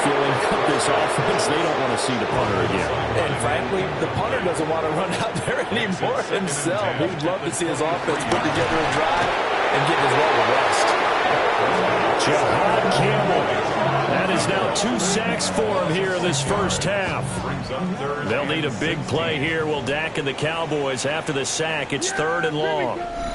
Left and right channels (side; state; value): both; identical; correlation 1.00